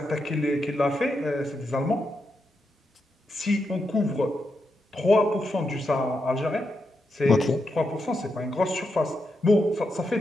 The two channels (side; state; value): both; normal; correlation 0.84